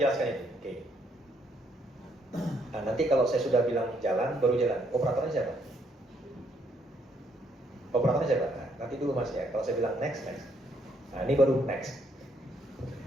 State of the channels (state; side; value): normal; both; correlation 0.71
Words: itu. Oke. Nah, nanti kalau saya sudah bilang jalan, baru jalan. Operatornya siapa? Nah, nanti dulu Mas ya. Kalau saya bilang next. Nah, ini baru next.